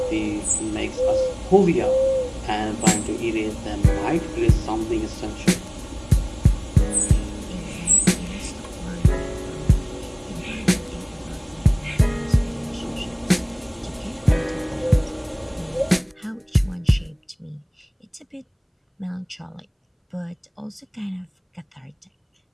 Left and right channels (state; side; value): identical; both; correlation 1.00